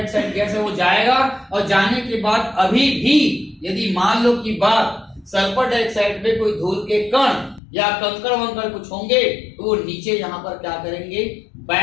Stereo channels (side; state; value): right; drops out; at 7.6 s